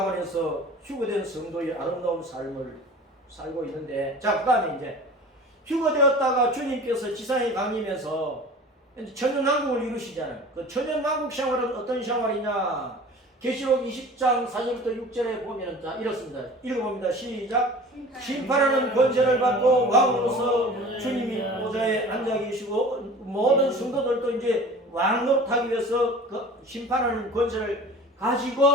휴거된 성도의 아름다운 삶을 살고 있는데 자 그 다음에 이제 휴거되었다가 주님께서 지상에 강림해서 천연왕국을 이루시잖아요. 그 천연왕국 생활은 어떤 생활이냐? 계시록 20장 4절부터 6절에 보면 자 이렇습니다. 읽어봅니다. 시작. 심판하는 권세를 받고 왕으로서 주님이 보좌에 앉아 계시고 모든 성도들도 이제 왕 노릇하기 위해서 그 심판하는 권세를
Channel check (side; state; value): both; normal; correlation 0.41